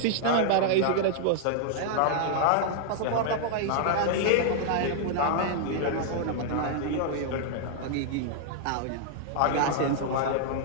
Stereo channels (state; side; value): different; both; correlation -0.01